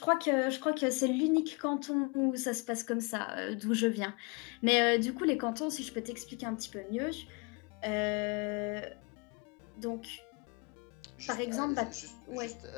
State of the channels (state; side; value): quieter; right; 30.4 dB